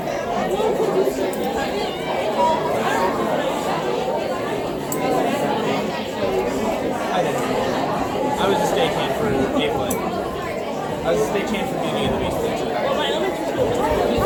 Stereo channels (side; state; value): both; identical; correlation 1.00